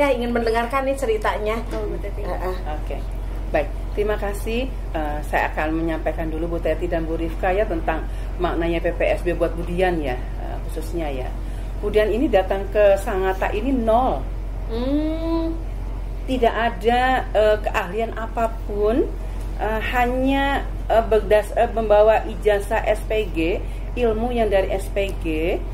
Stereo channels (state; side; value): identical; both; correlation 1.00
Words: ingin mendengarkan nih ceritanya. Oke. Baik, terima kasih. Saya akan menyampaikan dulu Bu Teti dan Bu Rifka ya tentang maknanya PPSB buat Budian ya, khususnya ya. Budian ini datang ke Sangatta ini nol. Tidak ada keahlian apapun, hanya membawa ijazah SPG, ilmu yang dari SPG,